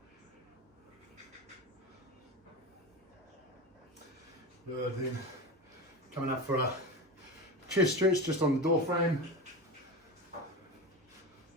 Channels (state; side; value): normal; both; correlation 0.23